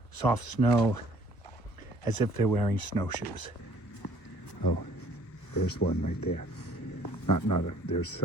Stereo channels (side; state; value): right; late; 1.0 ms